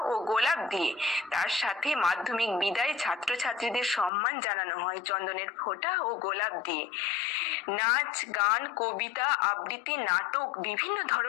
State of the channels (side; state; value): right; drops out; at 4.1 s